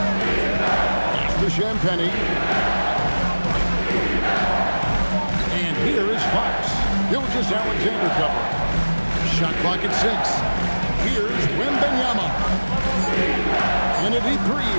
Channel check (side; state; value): both; inverted; correlation -1.00